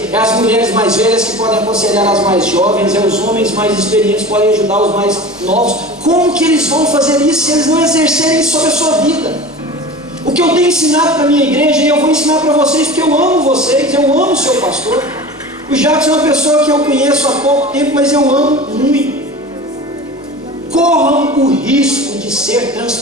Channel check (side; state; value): both; normal; correlation 0.35